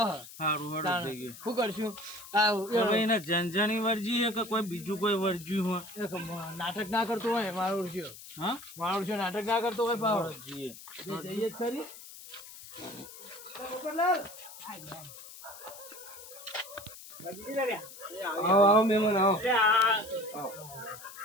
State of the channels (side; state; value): left; noise; hiss, 16 dB below the sound